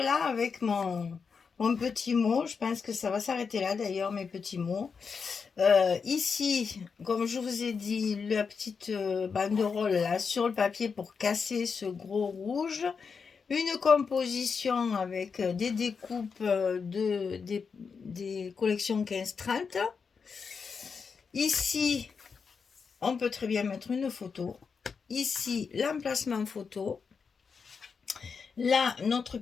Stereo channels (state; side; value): quieter; right; 5.6 dB